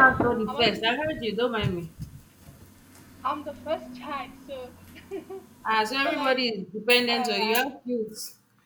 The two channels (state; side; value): identical; both; correlation 1.00